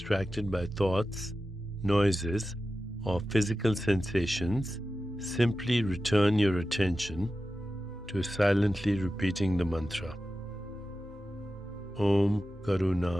by thoughts, noises, or physical sensations, simply return your attention to silently repeating the mantra. Om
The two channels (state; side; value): normal; both; correlation 0.93